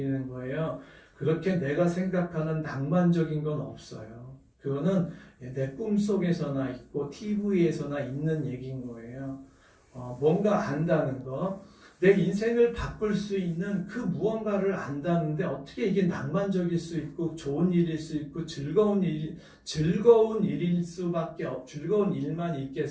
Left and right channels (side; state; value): both; identical; correlation 1.00